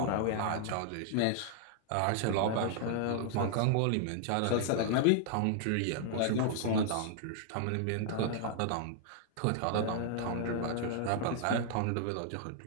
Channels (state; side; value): different; both; correlation -0.01